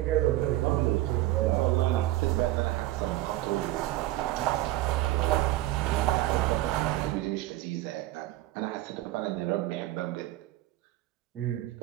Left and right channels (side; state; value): left; quieter; 16.1 dB